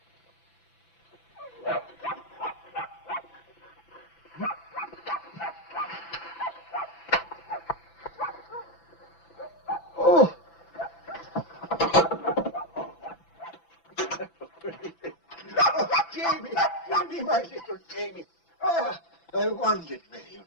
Oh! Jamie! Jamie, my little Jamie! Oh, I wondered where you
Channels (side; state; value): right; late; 6.0 ms